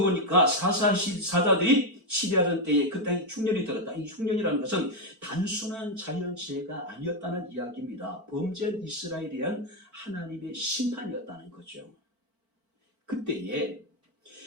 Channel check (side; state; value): left; late; 4.5 ms